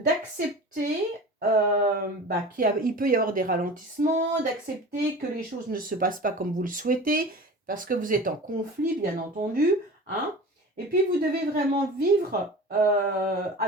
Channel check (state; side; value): normal; both; correlation 0.36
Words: qu'il peut y avoir des ralentissements, d'accepter que les choses ne se passent pas comme vous le souhaitez, parce que vous êtes en conflit, bien entendu. Hein. Et puis, vous devez vraiment vivre